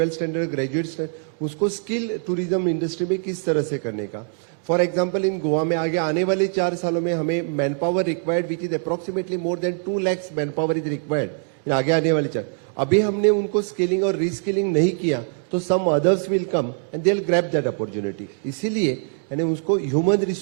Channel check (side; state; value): left; silent; 58 dB below the other